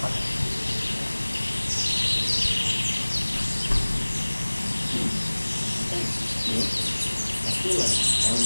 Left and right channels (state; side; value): inverted; both; correlation -1.00